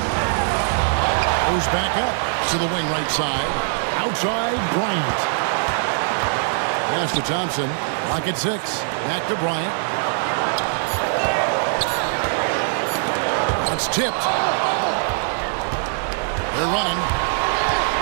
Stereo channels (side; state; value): left; silent; 64 dB below the other